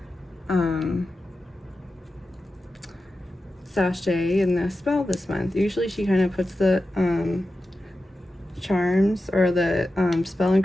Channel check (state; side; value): normal; both; correlation 0.92